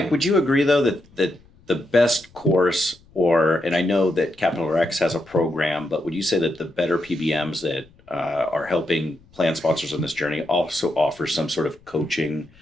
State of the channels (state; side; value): noise; left; rumble, 28 dB below the sound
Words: would you agree though that the best course, and I know that Capital X has a program, but would you say that the better PBMs that are helping plan sponsors on this journey also offer some sort of coaching